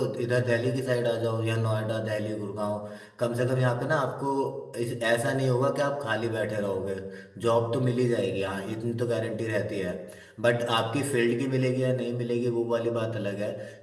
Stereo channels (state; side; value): identical; both; correlation 1.00